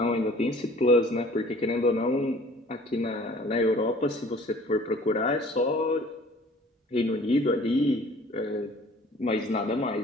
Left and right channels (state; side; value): normal; both; correlation 0.51